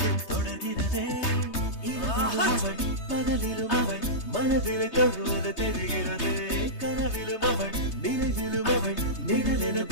தொடர்கிறதே அவள் பகலிலும் அவள் மனதிலே தொழுவது தெரிகிறது கனவிலும் அவள் நினைவிலும் அவள் நிழலென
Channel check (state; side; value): late; right; 3.2 ms